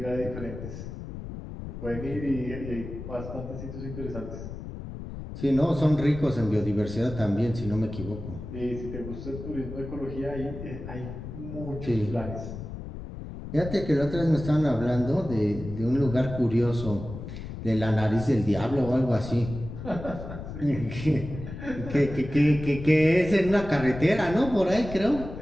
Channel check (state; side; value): noise; left; rumble, 10 dB below the sound